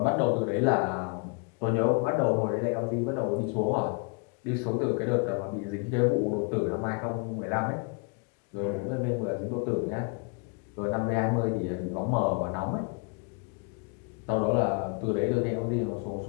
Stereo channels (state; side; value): quieter; right; 35.1 dB